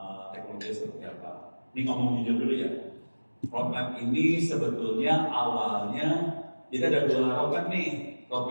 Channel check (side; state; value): both; inverted; correlation -1.00